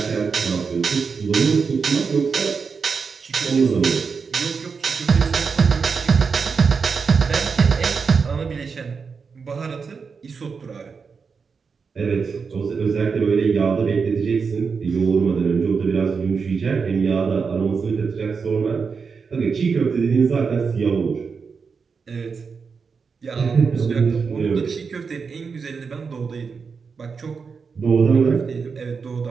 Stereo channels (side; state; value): left; quieter; 5.4 dB